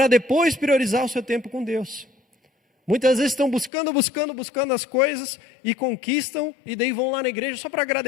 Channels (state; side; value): drops out; right; at 3.7 s